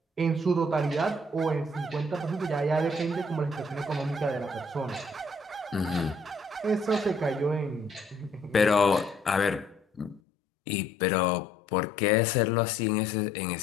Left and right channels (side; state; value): right; drops out; at 10.2 s